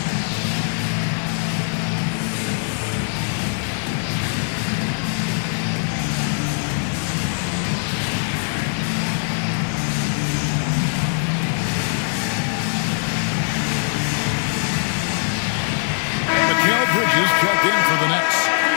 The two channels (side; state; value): right; silent; 65 dB below the other